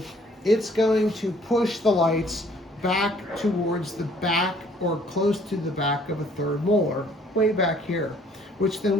it's going to push the lights back towards the back or close to the back of a third molar, way back here, which then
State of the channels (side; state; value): both; normal; correlation 0.59